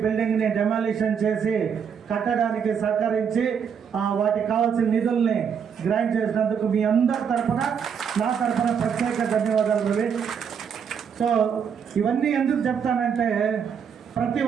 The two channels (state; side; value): quieter; left; 7.2 dB